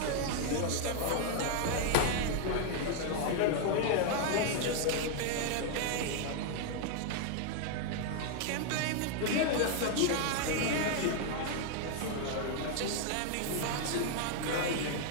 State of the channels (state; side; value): different; both; correlation 0.00